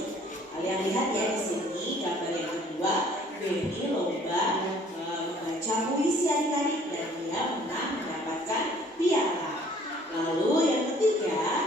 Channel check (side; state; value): both; normal; correlation 0.56